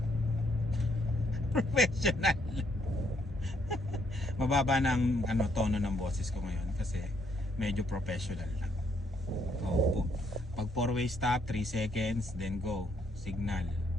Professional. Mababa ng tono ng boses ko ngayon kasi medyo professional na. Oh, pag 4-way stop, 3 seconds, then go. Signal.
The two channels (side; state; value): both; normal; correlation 0.71